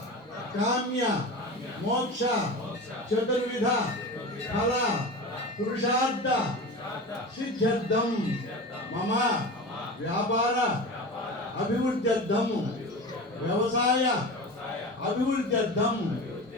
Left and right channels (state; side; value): normal; both; correlation 0.29